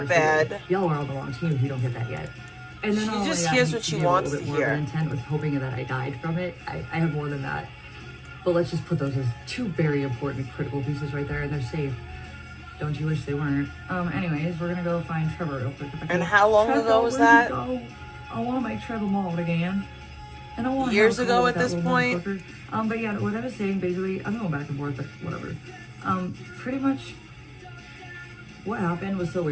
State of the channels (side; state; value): both; identical; correlation 1.00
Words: bad. Y'all are on the wrong team if you don't get that yet. And then she just hears what she wants to hear. Intent with hoping that I died from it. I have more than that. But let's just put those as 2 very important critical pieces right there, and they're safe. Don't you wish they weren't? Anyways, we're gonna go find Trevor real quick. And how long ago was that? I want to make Trevor mauled again. And I want years ago at this point. But yeah, what I was saying, basically, I'm going back and forth, but whatever. Pretty much what happened was so